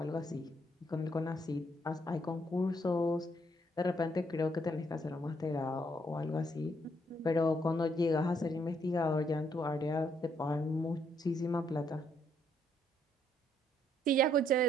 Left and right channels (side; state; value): both; normal; correlation 0.71